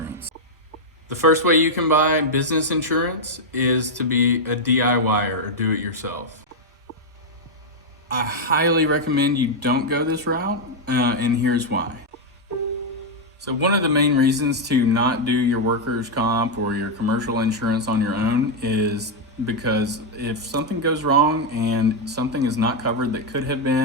The first way you can buy business insurance is to be a DIYer or do it yourself. I highly recommend you don't go this route, and here's why. So one of the main reasons to not do your workers' comp or your commercial insurance on your own is because if something goes wrong and something is not covered that could have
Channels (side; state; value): both; normal; correlation 0.00